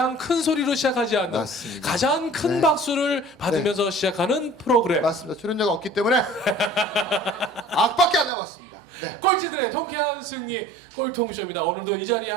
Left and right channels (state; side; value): drops out; left; at 8.3 s